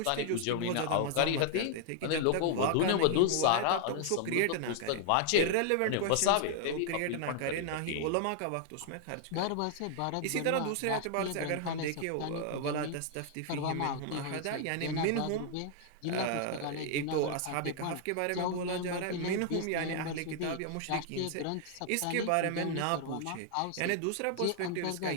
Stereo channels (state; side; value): different; both; correlation 0.00